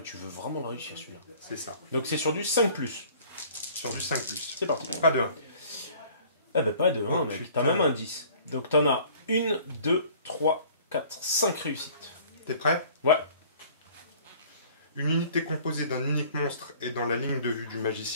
tu veux vraiment le réussir celui-là. C'est ça. Donc c'est sur du 5+. Sur du 5+. C'est parti. Pas de 1. Eh ben pas de 1, Oh, mec. putain. T'as même un 10. Donc t'en as 1, 2, 3, 4, 5 réussites. T'es prêt? Ouais. Une unité composée d'un unique monstre et dans la ligne de vue du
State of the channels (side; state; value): both; inverted; correlation -0.51